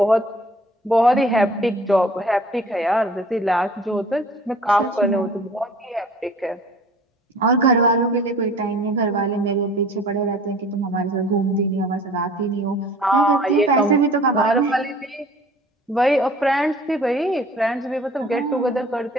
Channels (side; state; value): both; normal; correlation 0.49